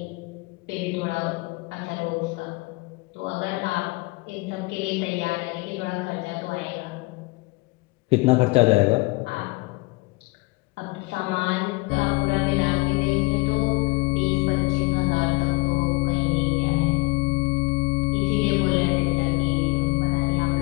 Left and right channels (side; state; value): right; quieter; 25.4 dB